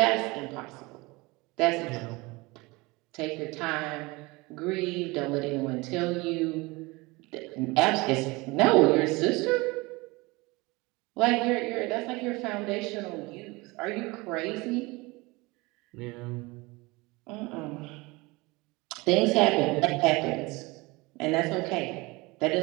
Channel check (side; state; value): left; quieter; 23.7 dB